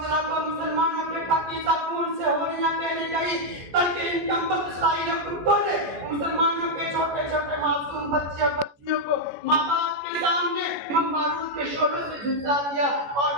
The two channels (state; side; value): late; left; 14 ms